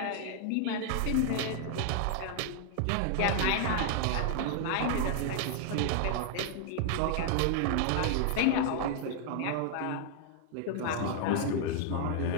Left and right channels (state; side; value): different; both; correlation 0.00